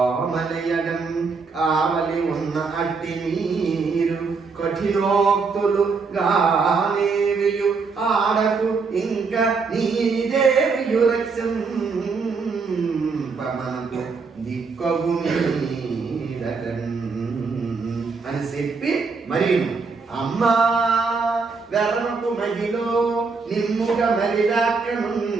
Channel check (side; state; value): left; quieter; 4.7 dB